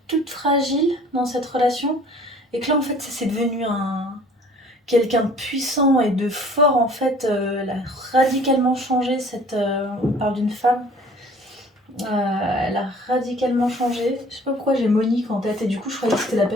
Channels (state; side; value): normal; both; correlation 0.51